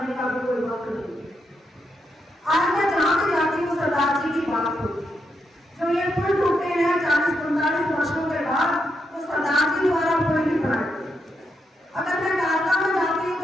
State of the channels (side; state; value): both; normal; correlation 0.82